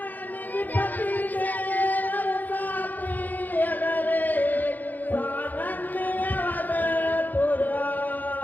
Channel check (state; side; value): late; right; 0.084 ms